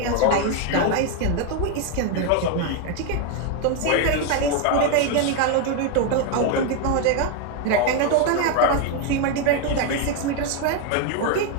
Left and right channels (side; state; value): both; different; correlation 0.01